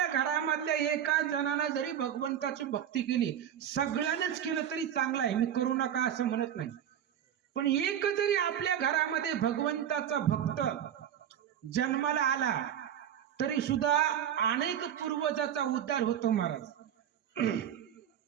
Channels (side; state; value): left; quieter; 9.9 dB